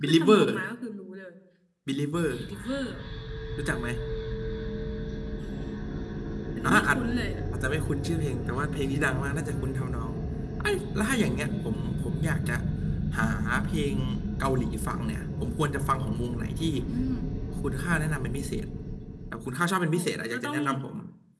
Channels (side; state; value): both; identical; correlation 1.00